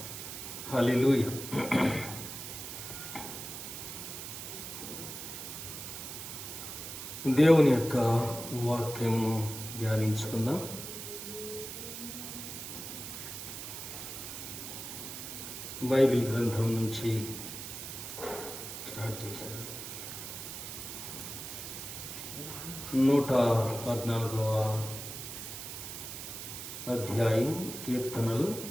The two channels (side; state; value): right; noise; hiss, 8 dB below the sound